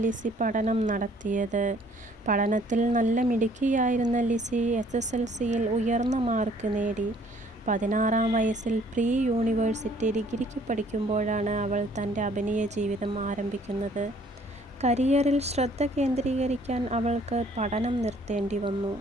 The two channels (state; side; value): normal; both; correlation 0.59